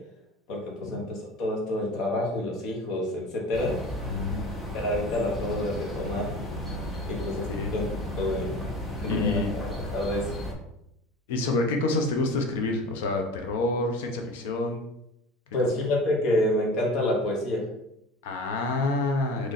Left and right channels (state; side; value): normal; both; correlation 0.37